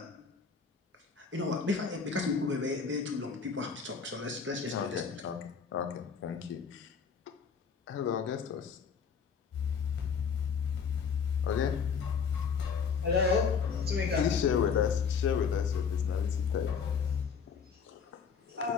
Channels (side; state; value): right; quieter; 6.2 dB